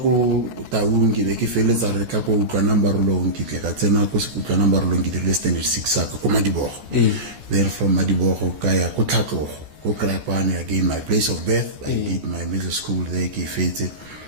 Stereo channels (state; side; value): late; left; 14 ms